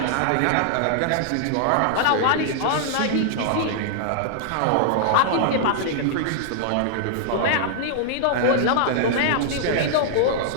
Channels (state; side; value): different; both; correlation -0.01